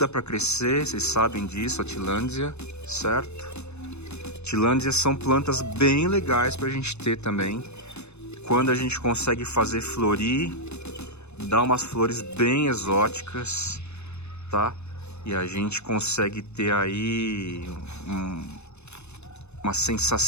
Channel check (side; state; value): right; late; 0.81 ms